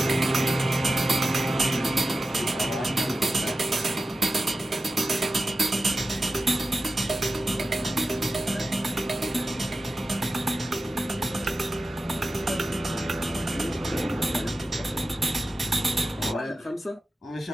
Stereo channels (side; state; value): both; normal; correlation 0.94